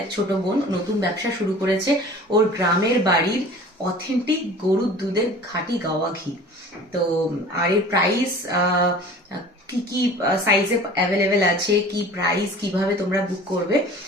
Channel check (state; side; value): normal; both; correlation 0.44